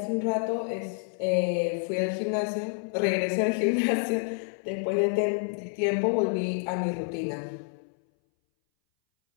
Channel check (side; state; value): right; silent; 59 dB below the other